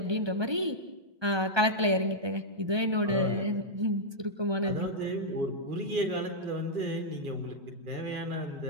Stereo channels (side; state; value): left; late; 1.2 ms